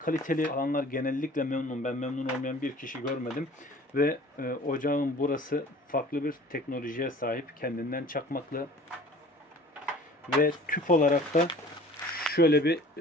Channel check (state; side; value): normal; both; correlation 0.47